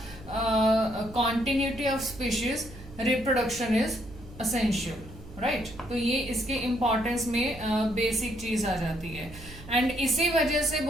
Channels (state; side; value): noise; right; hum, 17 dB below the sound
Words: continuity of species reproduction is essential, right तो ये इसके इम्पोर्टेंस में बेसिक चीज आ जाती है। एंड इसी वजह से